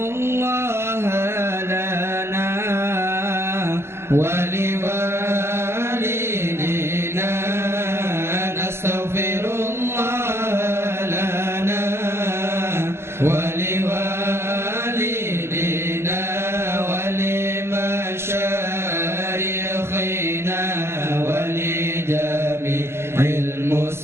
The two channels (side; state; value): left; late; 0.12 ms